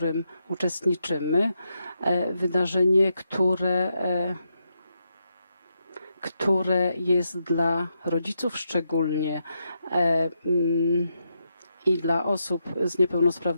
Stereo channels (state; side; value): inverted; both; correlation -0.83